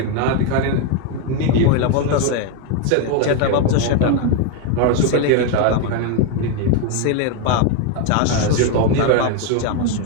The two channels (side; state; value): both; different; correlation 0.01